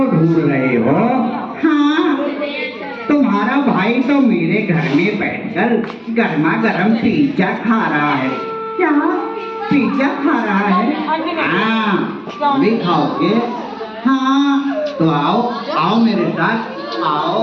ढूंढ रहे हो? हाँ। तुम्हारा भाई तो मेरे घर में बैठकर गर्मा गर्म पिज्जा खा रहा है। क्या? पिज्जा खा रहा है? हाँ, भी खाओगे? हाँ। तो आओ आओ मेरे साथ,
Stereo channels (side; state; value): both; identical; correlation 1.00